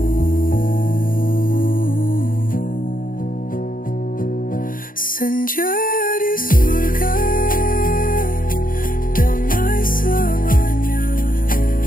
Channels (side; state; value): right; late; 0.40 ms